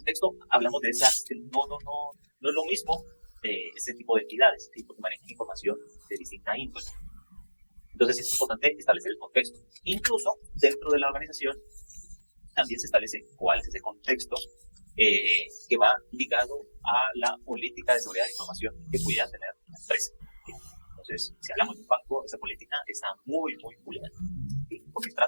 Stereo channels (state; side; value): inverted; both; correlation -1.00